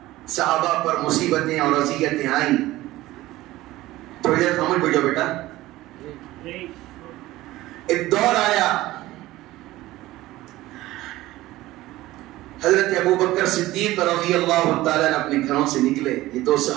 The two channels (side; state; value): left; quieter; 17.1 dB